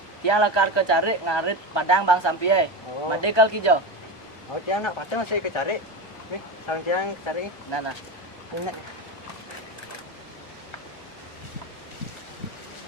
Tiang lakar ke cari ngarit padang bang sampie. Oh. Made kal kijo. Oh tiang nak patah masih ke cari. Nih, sarang tiang cari. Nana. Ini.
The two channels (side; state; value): right; late; 1.3 ms